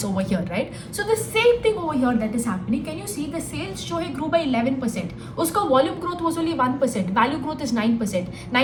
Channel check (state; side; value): identical; both; correlation 1.00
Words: over here, right? So the same thing over here that is happening. Can you see the sales show grew by 11%, uska volume growth was only 1%, value growth is 9%.